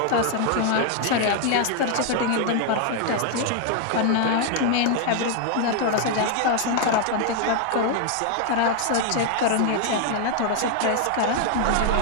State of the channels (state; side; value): different; both; correlation 0.00